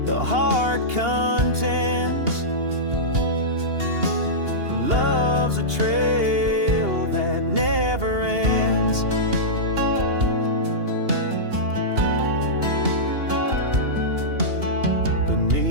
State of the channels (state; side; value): late; left; 2.8 ms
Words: the heart contends. Love's a trail that never ends.